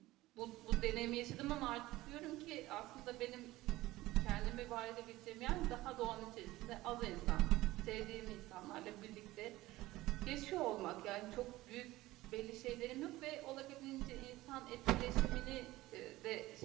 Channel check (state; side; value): quieter; left; 17.8 dB